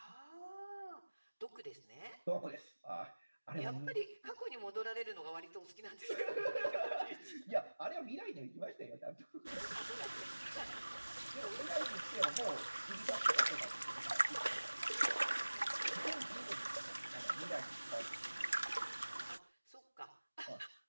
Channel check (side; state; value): both; inverted; correlation -1.00